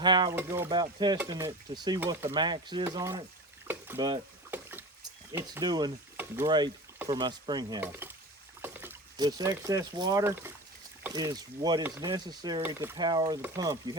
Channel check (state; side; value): normal; both; correlation 0.31